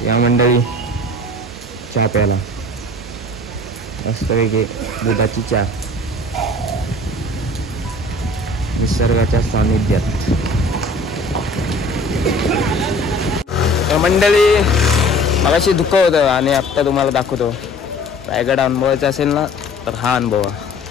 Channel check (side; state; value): both; normal; correlation 0.47